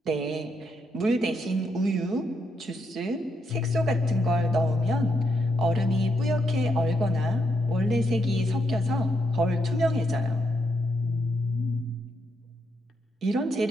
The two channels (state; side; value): normal; both; correlation 0.79